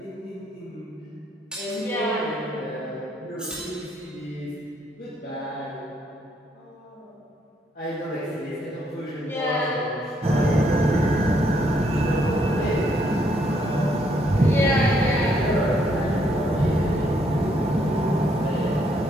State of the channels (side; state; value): both; normal; correlation 0.72